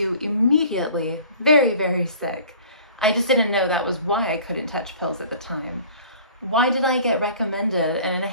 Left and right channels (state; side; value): inverted; both; correlation -0.48